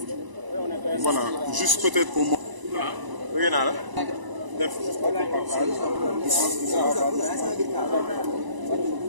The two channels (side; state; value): left; late; 1.0 ms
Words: Voilà, juste peut-être pour moi.